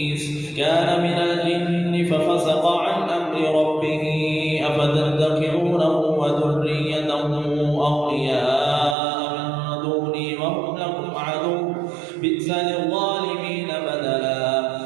كان من الجن ففسق عن أمر ربه أفتتخذونه وذريته أولياء من دوني وهم لكم عدو بئس للظالمين بدلا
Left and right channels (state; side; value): drops out; left; at 9.0 s